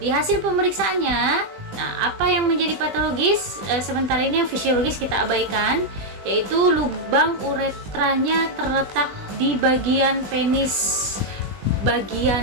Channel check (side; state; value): left; late; 20 ms